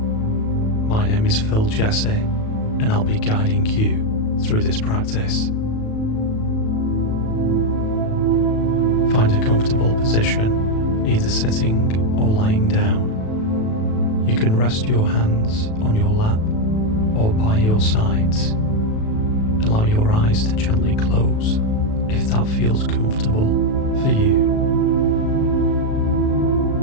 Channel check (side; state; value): right; late; 37 ms